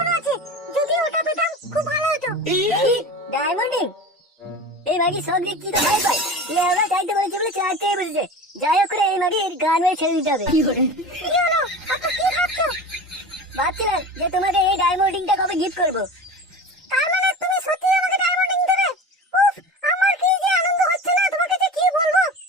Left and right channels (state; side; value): normal; both; correlation 0.33